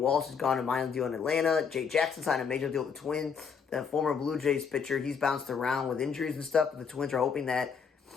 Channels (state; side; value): quieter; right; 6.3 dB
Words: has gone to a minor league deal in Atlanta. Jay Jackson signed a major deal with the Twins. The former Blue Jays pitcher, he's bounced around with injuries and stuff, but the Twins are hoping that